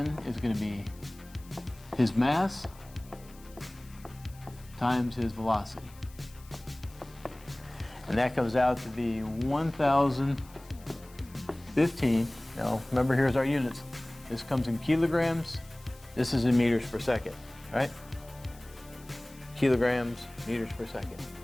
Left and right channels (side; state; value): left; noise; hiss, 24 dB below the sound